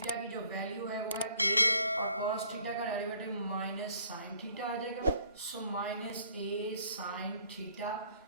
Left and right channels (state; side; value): inverted; both; correlation -0.61